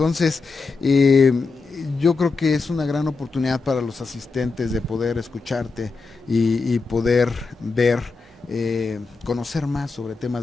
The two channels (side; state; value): right; quieter; 4.2 dB